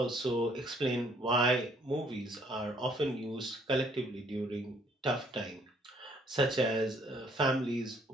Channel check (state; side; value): normal; both; correlation 0.63